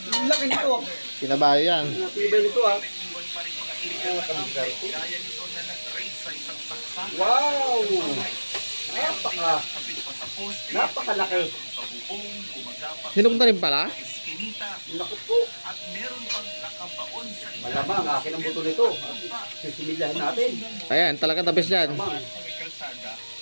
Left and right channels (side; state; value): both; inverted; correlation -1.00